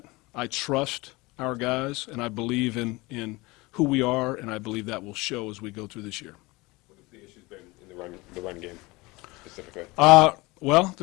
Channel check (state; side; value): quieter; right; 23.1 dB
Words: I trust our guys, and I believe in who we are, and I believe that will show as we go through this year. What have the issues been in the run game specifically? Well,